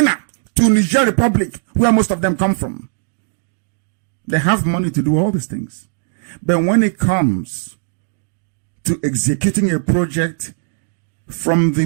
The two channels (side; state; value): left; silent; 67 dB below the other